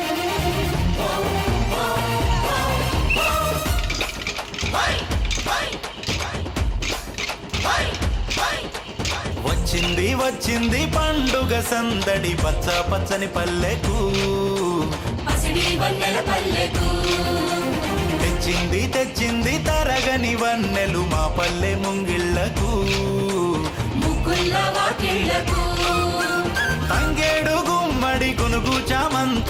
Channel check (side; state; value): both; identical; correlation 1.00